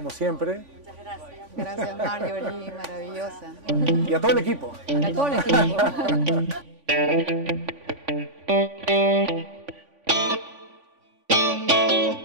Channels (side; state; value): left; late; 3.5 ms